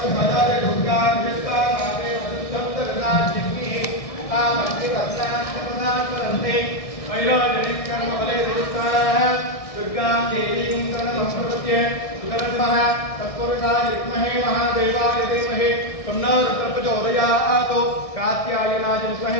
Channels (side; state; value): right; late; 1.6 ms